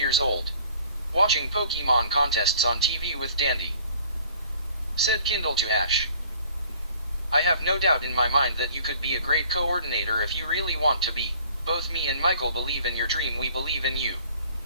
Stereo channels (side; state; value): both; inverted; correlation -0.54